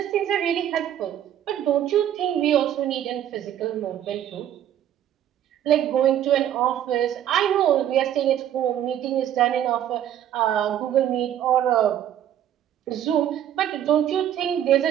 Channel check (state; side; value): quieter; left; 10.9 dB